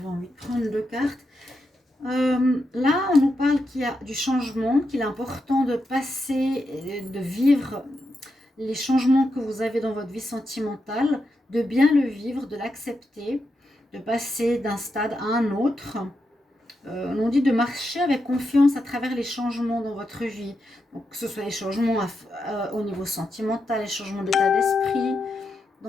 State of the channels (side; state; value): both; normal; correlation 0.85